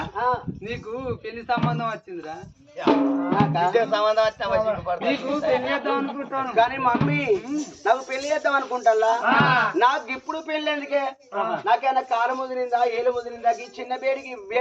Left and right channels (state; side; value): identical; both; correlation 1.00